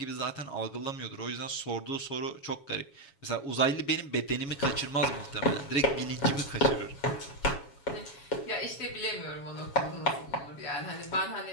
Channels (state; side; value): late; right; 7.2 ms